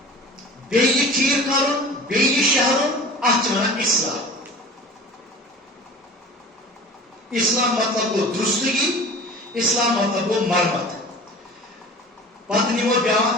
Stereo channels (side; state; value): both; normal; correlation 0.40